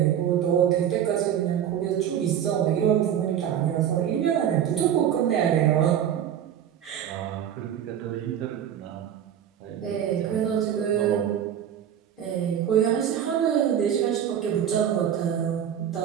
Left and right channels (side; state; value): left; quieter; 9.7 dB